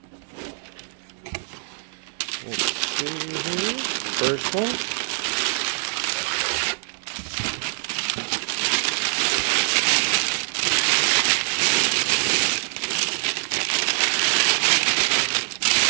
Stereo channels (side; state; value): left; silent; digital silence